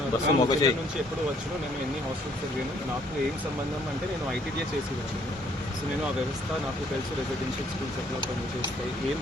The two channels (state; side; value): normal; both; correlation 0.64